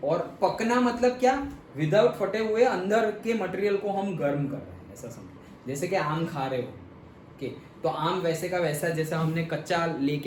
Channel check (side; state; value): both; identical; correlation 1.00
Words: और पकना मतलब क्या, विदाउट फटे हुए अंदर के मटेरियल को हम गर्म कर रहे हैं, ऐसा समझो। जैसे कि आम खा रहे हो ओके, तो आम वैसे का वैसा जैसा हमने कच्चा